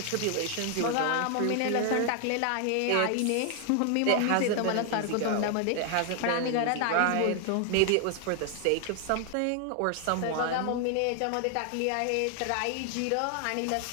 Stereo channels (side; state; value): both; different; correlation 0.00